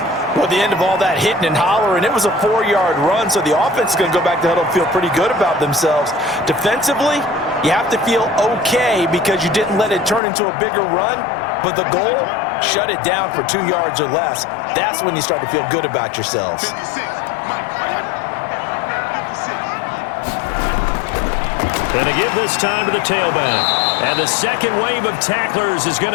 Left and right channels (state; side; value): drops out; right; at 10.2 s